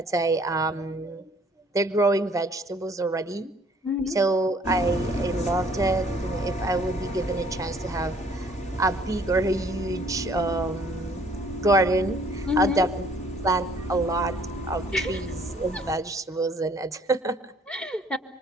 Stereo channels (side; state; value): both; normal; correlation 0.59